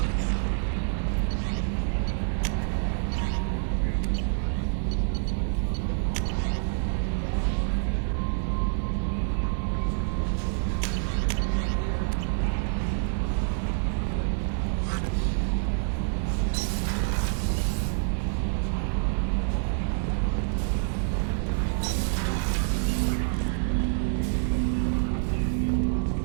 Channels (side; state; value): left; silent; digital silence